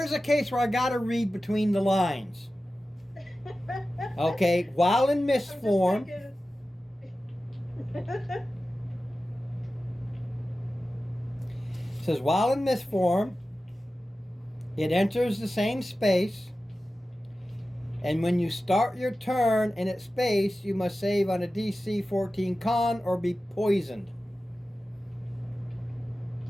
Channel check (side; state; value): both; normal; correlation 0.95